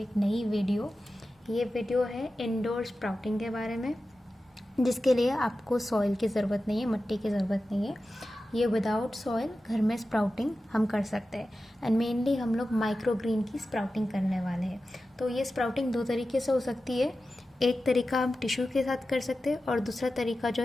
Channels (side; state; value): both; normal; correlation 0.93